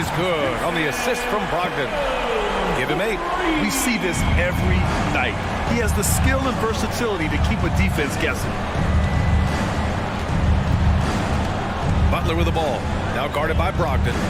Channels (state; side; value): identical; both; correlation 1.00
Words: good on the assist from Brogdon. Give him 8. We see this every night. He has the skill and versatility to keep a defense guessing. Butler with the ball. Now guarded by Brogdon.